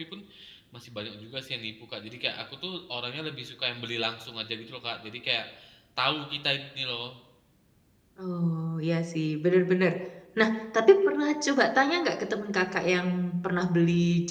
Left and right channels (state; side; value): identical; both; correlation 1.00